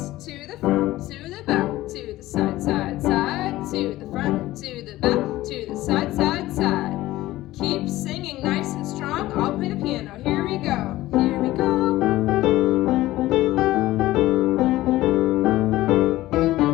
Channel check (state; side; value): quieter; right; 16.6 dB